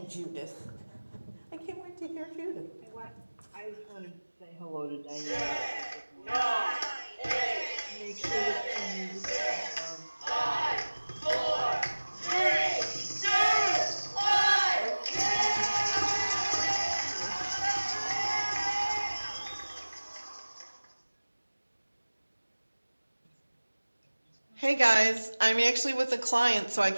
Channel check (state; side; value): inverted; both; correlation -1.00